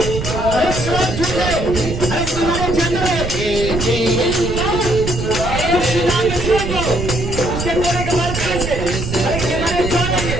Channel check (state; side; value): noise; right; rumble, 5 dB below the sound